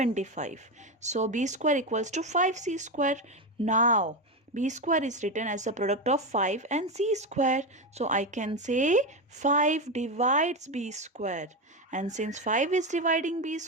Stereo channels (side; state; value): both; normal; correlation 0.14